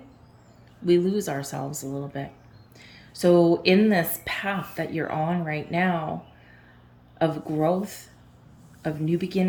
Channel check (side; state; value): both; identical; correlation 1.00